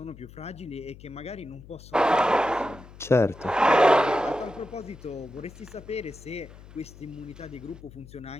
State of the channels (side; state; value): left; noise; hum, 19 dB below the sound